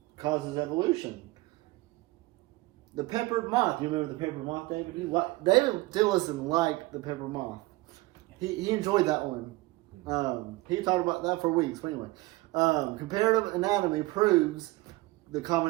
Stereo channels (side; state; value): left; quieter; 20.8 dB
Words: causes evolution. The peppered moth. You remember the peppered moth, David? David Dillison liked the peppered moth. He enjoyed that one. He talked about that for weeks. But anyway, comparative anatomy proves the